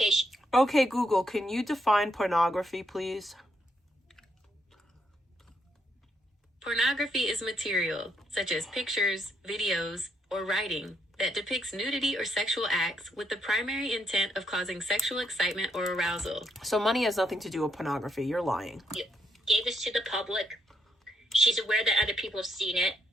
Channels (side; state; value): both; normal; correlation 0.75